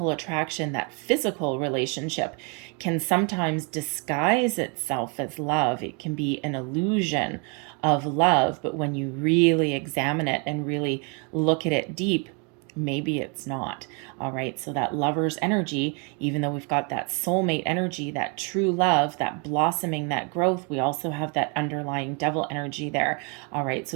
attraction, that physical relationship can sometimes disguise itself as love. It can be an illusion of love, but when you really examine it and really look at it deep, maybe it's not. All right. So that lover's energy, even though we've got that soulmate energy, that true love, that blossoming, that growth, we also have that underlying devil energy there. All right.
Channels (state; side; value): quieter; left; 35.2 dB